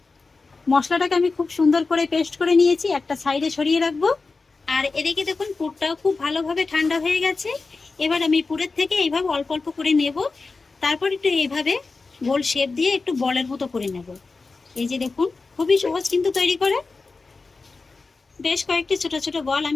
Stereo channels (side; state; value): right; quieter; 4.0 dB